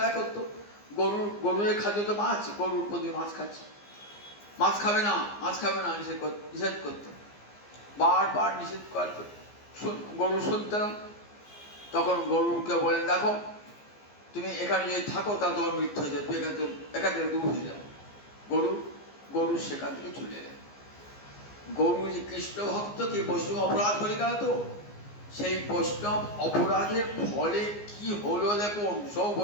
করতো, গরুর খাদ্য তো মাছ, গরুর প্রতি মাছ খাচ্ছে, মাছ খাবে না মাছ খাবে না নিষেধ করতো, বারবার নিষেধ করতো। গরু শুনতে না, তখন গরুকে বলেন, দেখো তুমি এখানে যদি থাকো তা তোমার মৃত্যু হয়ে যাবে, এখান থেকে দূর হয়ে যাবে। গরু সেখান থেকে চলে এলেন। গরু যে কৃষ্ণ ভক্তকে বৈষ্ণব অপরাধ করে গেল, তো সেই বৈষ্ণব অপরাধের ফলে কি হলো দেখুন, সব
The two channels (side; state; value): right; late; 15 ms